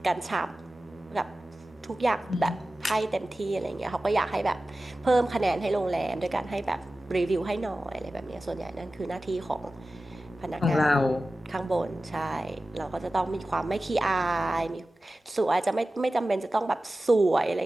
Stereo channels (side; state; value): both; normal; correlation 0.95